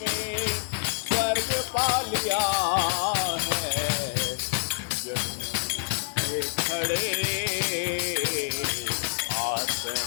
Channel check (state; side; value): silent; right; 59 dB below the other